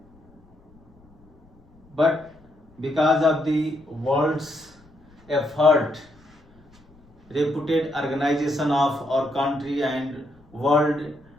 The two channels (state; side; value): noise; left; rumble, 29 dB below the sound